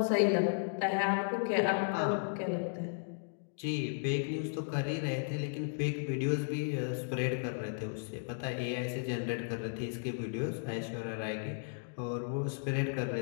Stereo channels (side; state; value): right; silent; digital silence